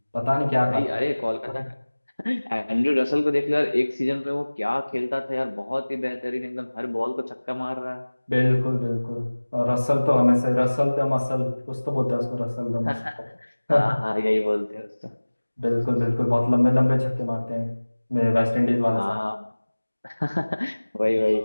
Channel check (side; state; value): both; inverted; correlation -1.00